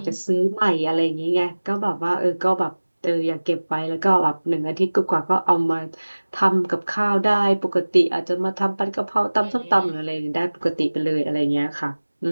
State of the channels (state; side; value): inverted; both; correlation -1.00